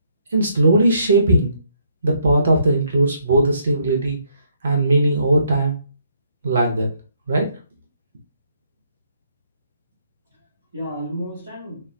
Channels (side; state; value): both; inverted; correlation -0.70